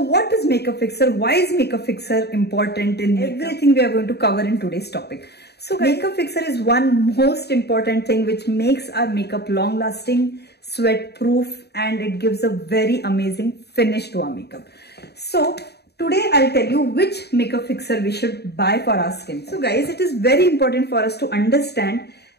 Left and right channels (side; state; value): right; late; 0.48 ms